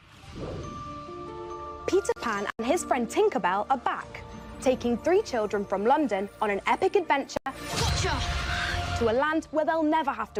Peter Pan and his friend Tinkerbell are back, taking 3 children from London on an epic adventure to a land where they'll never have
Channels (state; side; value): identical; both; correlation 1.00